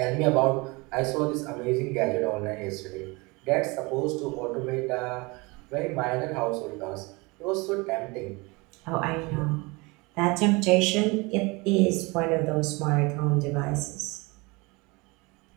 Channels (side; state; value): left; quieter; 26.0 dB